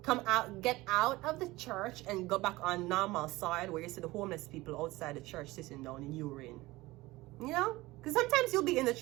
Come out, get out of the church and go back on normal side where you see the homeless people outside the church sitting down in urine. Because sometimes you'll be in the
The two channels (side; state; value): left; quieter; 19.8 dB